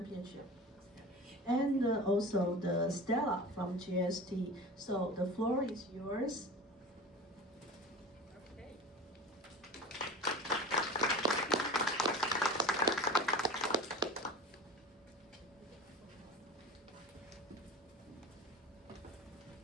And also the Stella from GST. So the floor is yours. Okay.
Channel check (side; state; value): both; normal; correlation 0.35